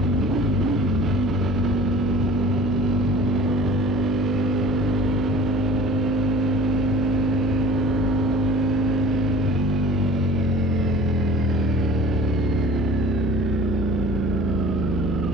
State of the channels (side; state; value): left; noise; hum, 7 dB below the sound